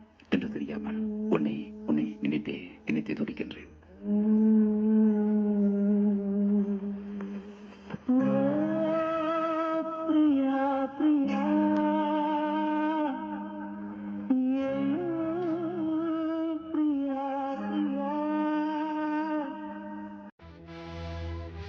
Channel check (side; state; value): both; identical; correlation 1.00